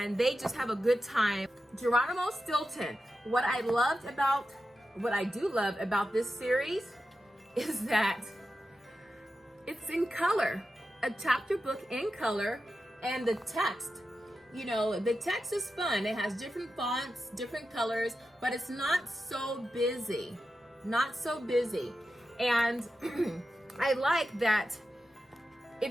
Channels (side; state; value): both; normal; correlation 0.91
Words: they just have a good time. Geronimo Stilton. What I do love about this series is that it's in color, a chapter book in color, and the text. You know, the text is fun. It has different fonts, different colors, but it's not so busy. Not so busy. And I like that.